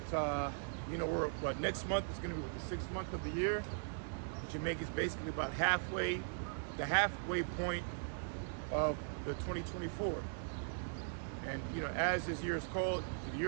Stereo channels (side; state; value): left; silent; digital silence